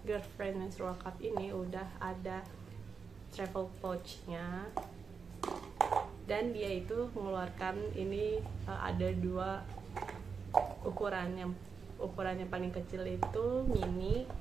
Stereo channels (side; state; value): left; quieter; 5.6 dB